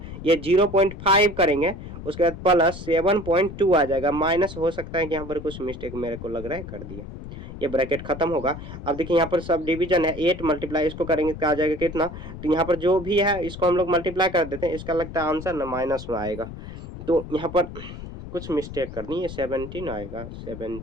ये 0.5 करेंगे, उसके बाद प्लस 7.2 आ जाएगा, माइनस हो सकता है कि यहाँ पर कुछ मिस्टेक मेरे को लग रहा है कर दिया, ये ब्रैकेट खत्म होगा। अब देखिए यहाँ पर सब डिवीजन है, 8 मल्टीप्लाई इसको करेंगे क्या आ जाएगा कितना, तो यहाँ पर जो भी है इसको हम लोग मल्टीप्लाई कर देते हैं, इसका लगता है आंसर ना माइनस में आएगा, तो यहाँ पर कुछ मिस्टेक करनी है, 17 आएगा,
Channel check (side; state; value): left; noise; rumble, 11 dB below the sound